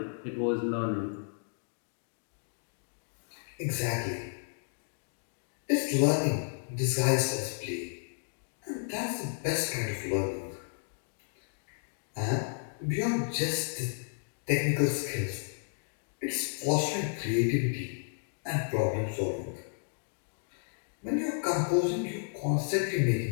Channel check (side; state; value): right; silent; digital silence